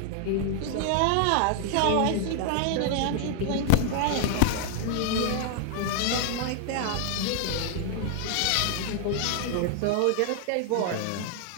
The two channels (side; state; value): both; different; correlation -0.01